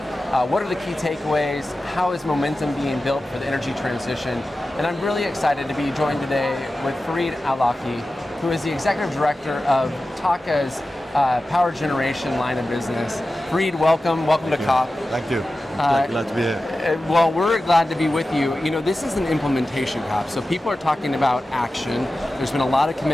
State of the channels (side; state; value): both; normal; correlation 0.94